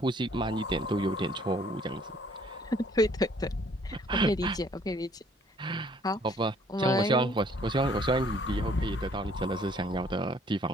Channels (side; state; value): both; normal; correlation 0.60